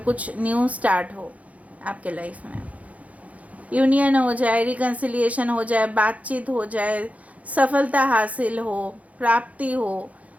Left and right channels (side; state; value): left; late; 0.068 ms